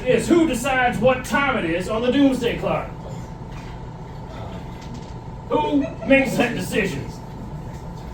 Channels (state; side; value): identical; both; correlation 1.00